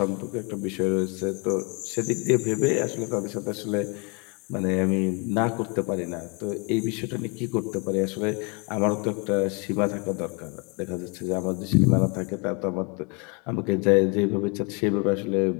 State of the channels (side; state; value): right; quieter; 32.8 dB